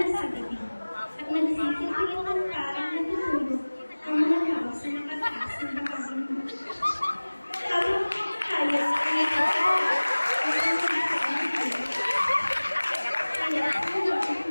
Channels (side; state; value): both; inverted; correlation -1.00